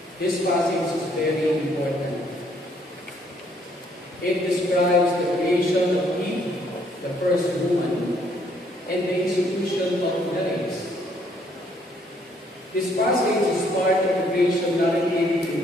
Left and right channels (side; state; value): both; normal; correlation 0.67